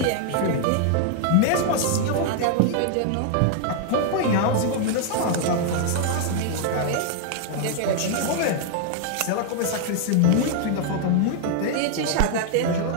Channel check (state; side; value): different; both; correlation 0.00